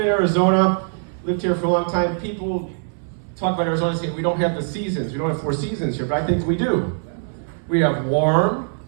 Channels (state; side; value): silent; left; 64 dB below the other